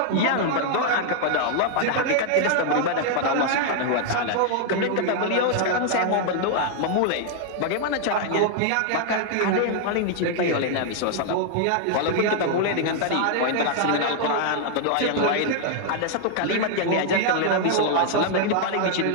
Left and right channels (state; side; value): different; both; correlation 0.00